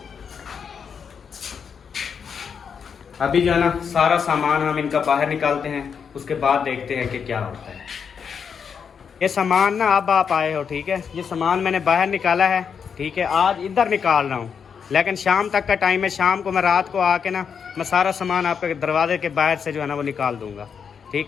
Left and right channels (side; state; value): right; quieter; 6.7 dB